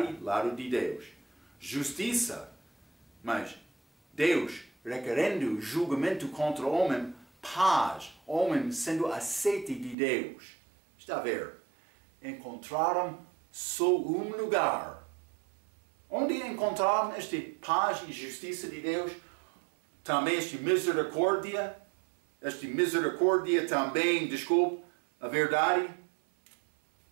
lado de Deus. Justiça, mas Deus requerendo julgamento contra o homem, paz, homem sendo aceite de Deus. Está a ver? Encontraram só um lugar. Onde encontraram esta paz e justiça de Deus? Também esta misericórdia também, desculpe, a verdade.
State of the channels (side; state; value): left; drops out; at 10.0 s